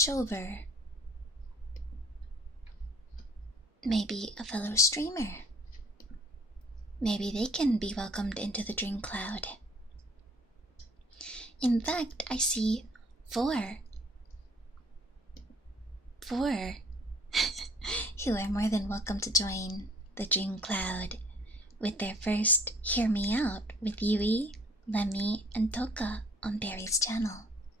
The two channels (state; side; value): normal; both; correlation 0.56